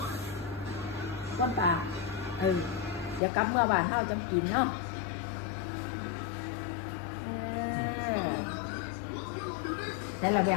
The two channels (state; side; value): drops out; right; at 3.2 s